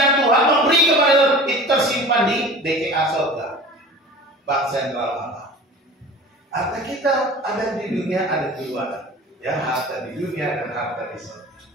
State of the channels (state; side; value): normal; both; correlation 0.40